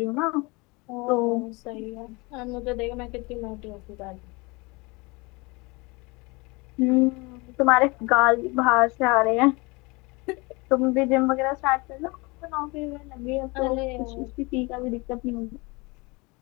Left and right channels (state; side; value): quieter; right; 26.2 dB